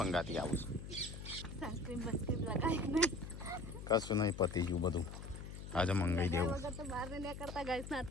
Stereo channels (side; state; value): left; noise; hum, 10 dB below the sound